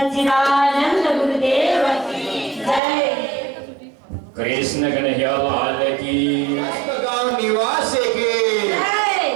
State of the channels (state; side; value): drops out; left; at 2.8 s